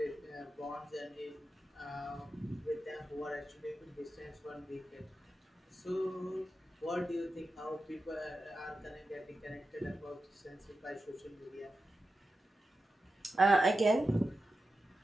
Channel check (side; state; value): both; normal; correlation 0.91